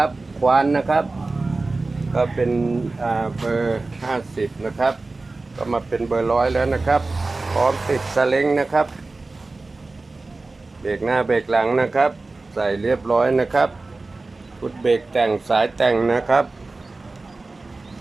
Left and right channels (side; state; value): left; quieter; 3.4 dB